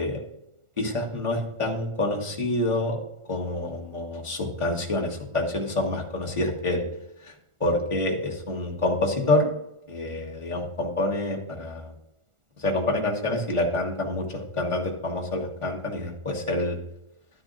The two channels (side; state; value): left; late; 1.4 ms